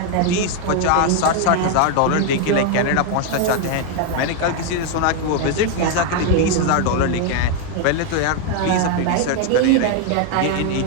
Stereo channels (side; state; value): both; different; correlation 0.01